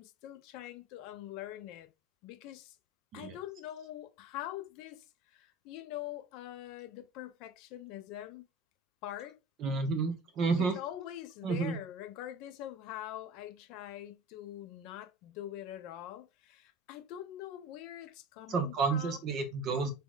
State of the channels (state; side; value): normal; both; correlation 0.39